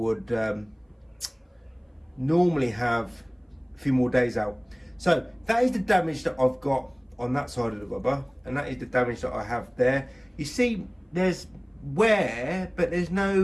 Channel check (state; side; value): identical; both; correlation 1.00